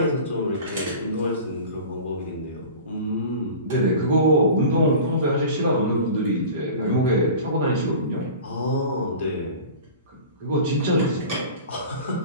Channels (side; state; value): both; inverted; correlation -0.37